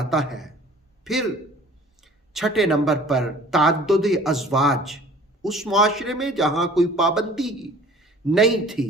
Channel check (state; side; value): normal; both; correlation 0.49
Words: ہے۔ پھر 6 نمبر پر تعدد ازواج، اس معاشرے میں جہاں کوئی پابندی نہیں تھی،